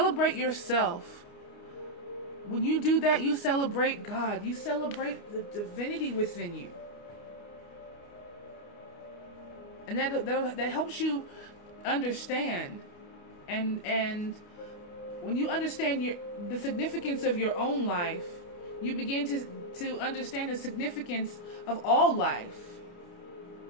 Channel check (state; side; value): late; right; 29 ms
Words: yourself. When you do that, you celebrate God. You celebrate the divinity within you. And that helps you understand. And when you understand the significance of your own life, you begin to understand the significance of all life